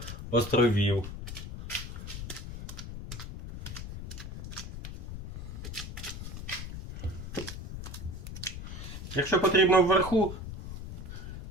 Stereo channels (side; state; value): left; noise; rumble, 9 dB below the sound